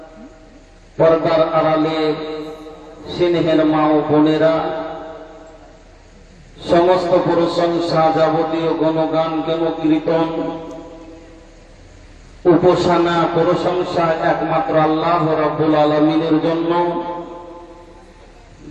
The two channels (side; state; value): both; identical; correlation 1.00